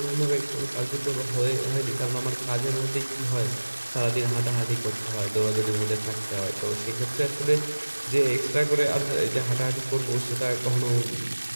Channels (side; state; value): both; inverted; correlation -1.00